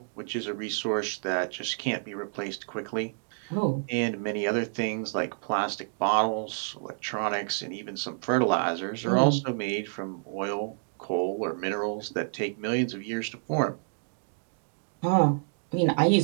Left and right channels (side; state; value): left; silent; digital silence